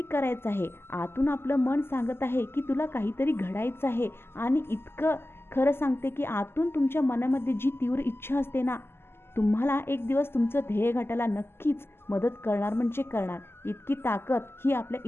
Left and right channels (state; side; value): late; right; 0.12 ms